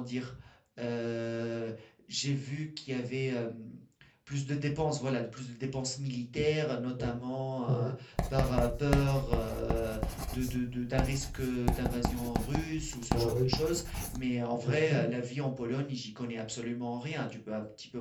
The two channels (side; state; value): both; identical; correlation 1.00